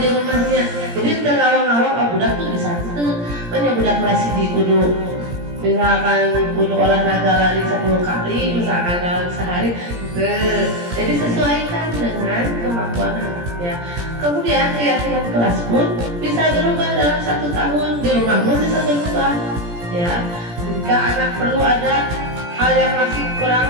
rumahnya. Jadi ngawang-ngawang budak tuh bisa budak kelas di kudu misalkan kudu olahraga lari 10 kali misalkan dalam sehari. Jadi sesuaikan dengan kemampuan anaknya. Kemudian keyakinan kelas pun bisa berubah dalam 1 tahun. Di rumah pun bisa berubah. Ya, jika anak perlu ada hal yang masih kurang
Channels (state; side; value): late; left; 17 ms